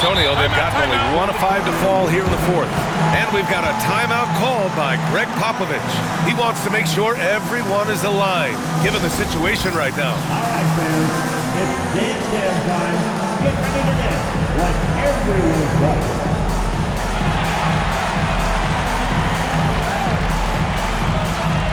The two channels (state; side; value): identical; both; correlation 1.00